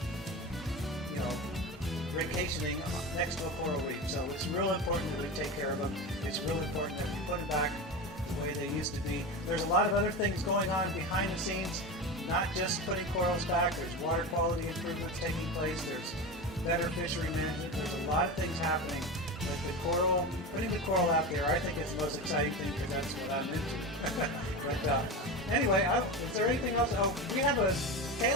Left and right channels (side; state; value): both; normal; correlation 0.24